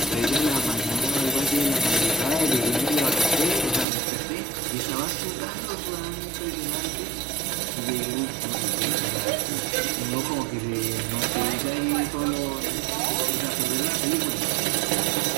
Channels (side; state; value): left; drops out; at 3.9 s